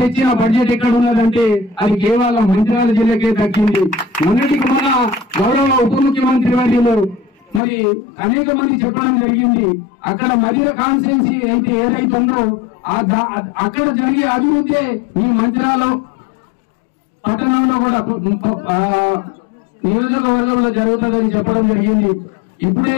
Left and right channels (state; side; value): drops out; right; at 7.6 s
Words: తెచ్చిన బడ్జెట్ ఎక్కడ ఉన్నదంటే అది కేవలం మంచిర్యాల జిల్లాకే దక్కింది. మొన్నటికి మన గౌరవ ఉప ముఖ్యమంత్రి వర్యులు మరి అనేక మంది చెప్పడం జరిగింది. అక్కడ మధ్య కాన్స్టిట్యున్సీ అయితే ఏదైతుందో అక్కడ జరిగే అభివృద్ధి మీ మంచిర్యాల పట్టణంలో కూడా నియోజకవర్గంలో జరుగుతుందని చెప్పడం జరిగింది. ఇప్పుడే